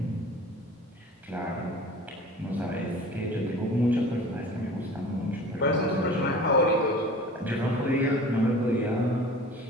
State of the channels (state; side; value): normal; both; correlation 0.42